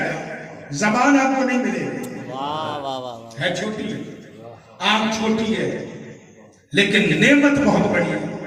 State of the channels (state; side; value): identical; both; correlation 1.00